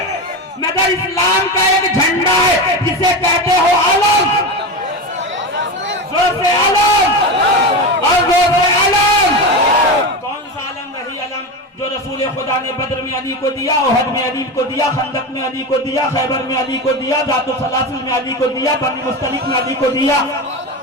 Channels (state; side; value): normal; both; correlation 0.21